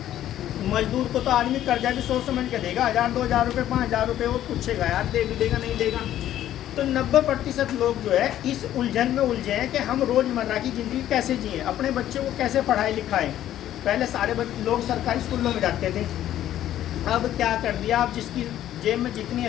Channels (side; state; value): right; quieter; 12.2 dB